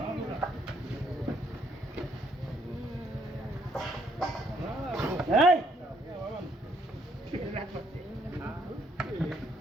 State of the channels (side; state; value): both; normal; correlation 0.69